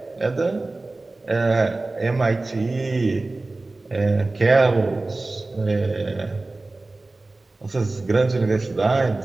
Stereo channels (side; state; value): left; quieter; 3.1 dB